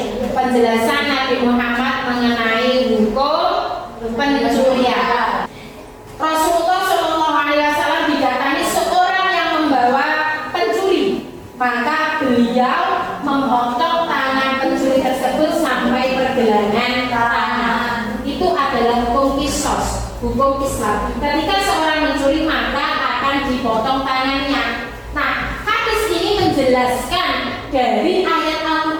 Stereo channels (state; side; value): identical; both; correlation 1.00